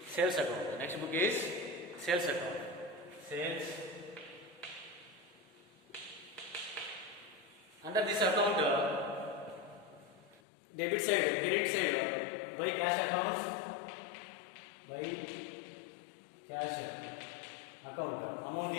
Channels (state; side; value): drops out; right; at 10.4 s